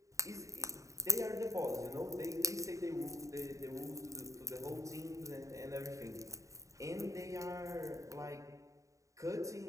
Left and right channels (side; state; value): left; late; 0.16 ms